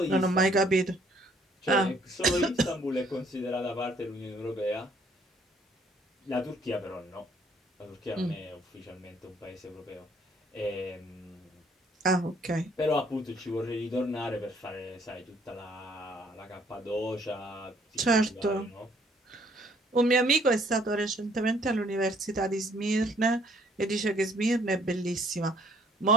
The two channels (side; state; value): both; normal; correlation 0.63